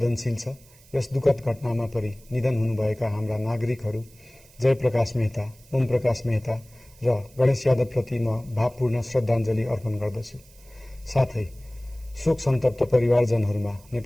छ। यस दुःखद घटनामा परि निधन हुनुभएका हाम्रा नागरिकहरू जयप्रकाश मेहता, ओम प्रकाश मेहता र गणेश यादवप्रति म भावपूर्ण श्रद्धाञ्जली अर्पण गर्दछु। साथै शोक सन्तप्त परिवारजनहरूमा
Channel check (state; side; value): noise; right; hiss, 26 dB below the sound